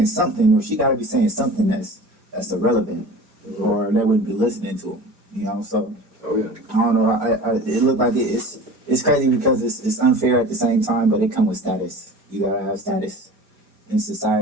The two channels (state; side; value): late; left; 4.6 ms